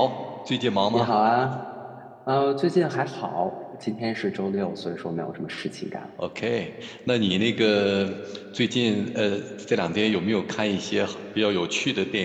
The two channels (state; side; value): identical; both; correlation 1.00